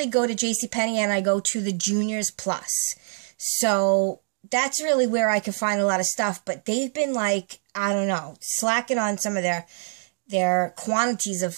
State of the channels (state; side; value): silent; left; digital silence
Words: go to Jcpenney and I go to the Juniors Plus. So that's really where I can find a lot of stuff, but they've been like, I don't know, slacking on some of their quantities